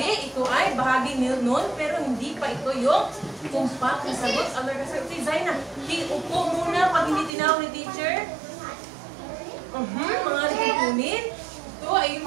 Ito ay bahagi nun, pero hindi pa ito yung tumpak na sagot. Merka, sir. Okay, Zaina, upo muna pag hindi tinawag ni teacher. Mga litupunin. Ito ay yung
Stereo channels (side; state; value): left; drops out; at 7.3 s